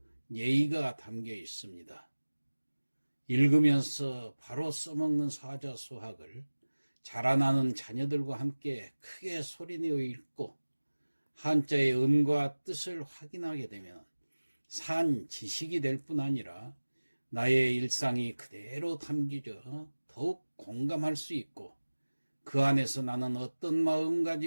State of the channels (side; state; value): both; inverted; correlation -1.00